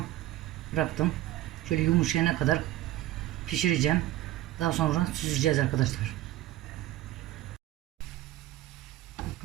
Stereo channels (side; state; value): left; quieter; 15.4 dB